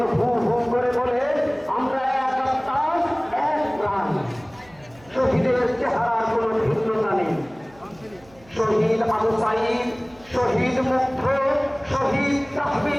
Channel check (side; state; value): right; noise; hum, 26 dB below the sound